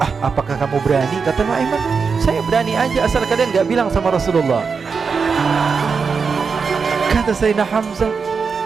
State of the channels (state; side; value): quieter; left; 5.4 dB